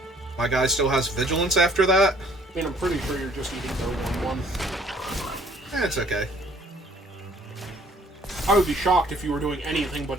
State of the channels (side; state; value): both; normal; correlation 0.59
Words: My guy still has vigilance after that. I mean, I'm pretty sure you're just eating their 1/1. It's okay. I would be shocked if you were doing anything but